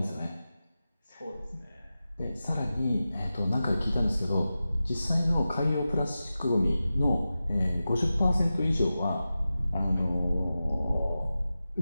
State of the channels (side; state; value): both; inverted; correlation -0.94